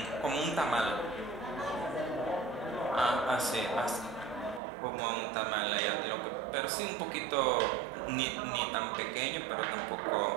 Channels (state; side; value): drops out; left; at 4.6 s